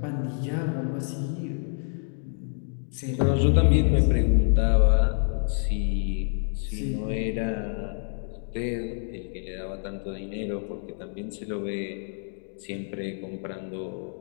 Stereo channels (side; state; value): right; silent; 59 dB below the other